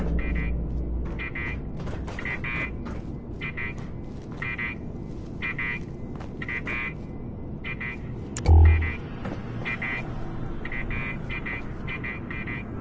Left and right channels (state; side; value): identical; both; correlation 1.00